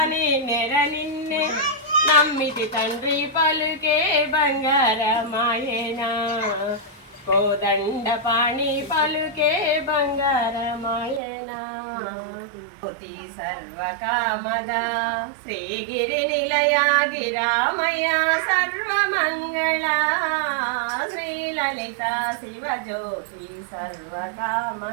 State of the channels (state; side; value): drops out; left; at 11.2 s